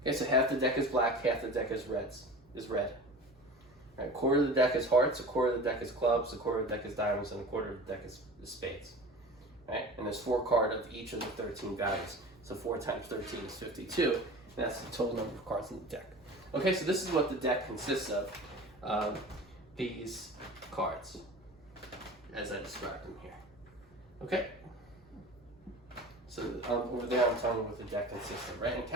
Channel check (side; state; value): both; normal; correlation 0.37